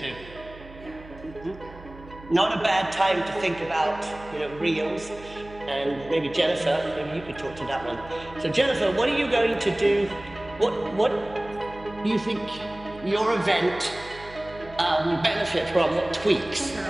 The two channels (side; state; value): right; noise; hum, 18 dB below the sound